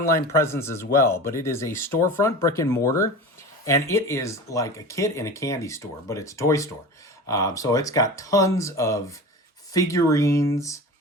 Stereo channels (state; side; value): normal; both; correlation 0.33